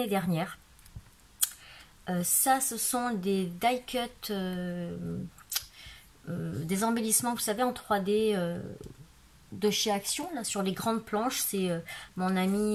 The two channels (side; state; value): both; identical; correlation 1.00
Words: dernière. Ça, ce sont des die cut, des embellissements, vous savez, en 3D de chez Action, là, sur les grandes planches. C'est mon